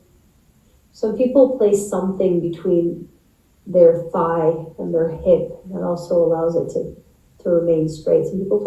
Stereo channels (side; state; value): both; identical; correlation 1.00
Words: Some people place something between their thigh and their hip. That also allows it to remain straight. Some people